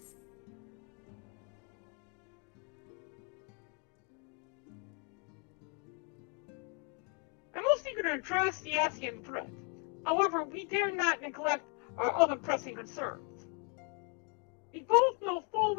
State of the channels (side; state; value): right; quieter; 36.4 dB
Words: I'm most eager to address the Asian threat. However, we dare not neglect our other pressing concerns. We both know full